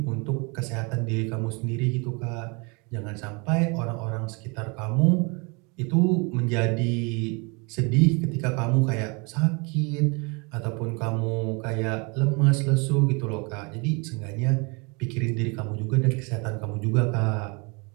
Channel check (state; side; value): quieter; left; 30.4 dB